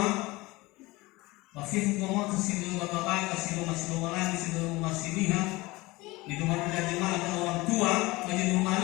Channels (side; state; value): right; quieter; 21.5 dB